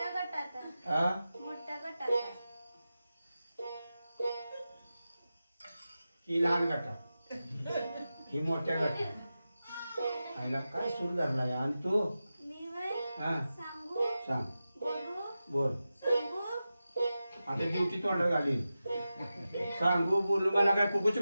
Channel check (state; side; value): inverted; both; correlation -0.93